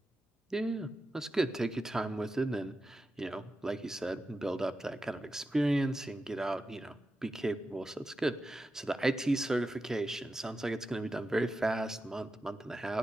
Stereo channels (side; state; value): both; normal; correlation 0.90